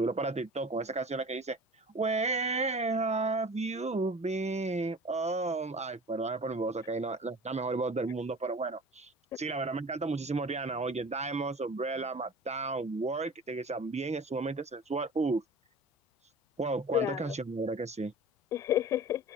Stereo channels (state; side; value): normal; both; correlation 0.41